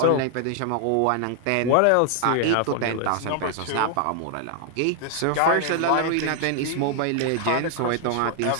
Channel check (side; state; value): both; different; correlation 0.00